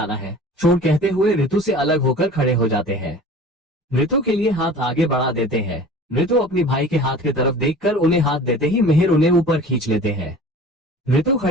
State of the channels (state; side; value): normal; both; correlation 0.42